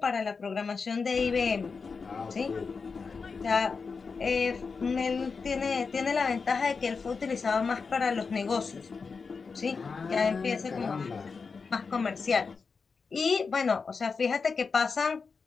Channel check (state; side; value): quieter; right; 5.0 dB